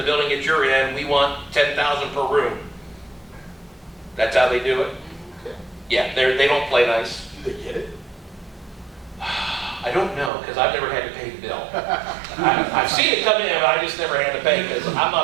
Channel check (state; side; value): drops out; left; at 10.3 s